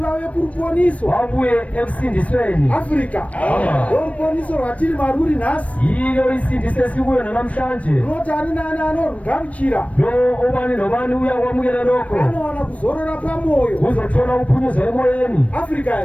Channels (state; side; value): late; right; 0.065 ms